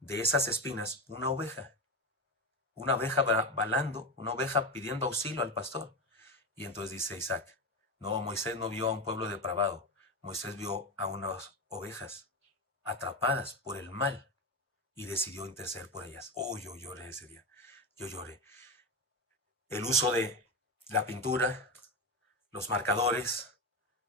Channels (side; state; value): both; normal; correlation 0.17